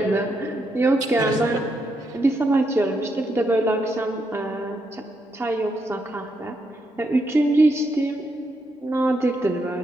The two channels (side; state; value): both; normal; correlation 0.80